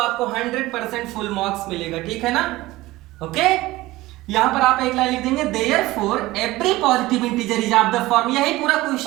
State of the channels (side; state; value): left; quieter; 18.5 dB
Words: 100% फुल मार्क्स मिलेगा, ठीक है ना। ओके, यहां पर आप एक लाइन लिख देंगे therefore every positive integer is of the form, यही पूरा